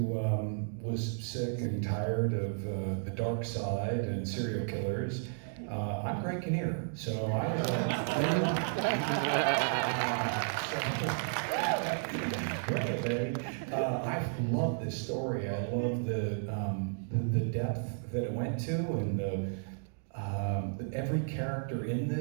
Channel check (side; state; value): left; silent; digital silence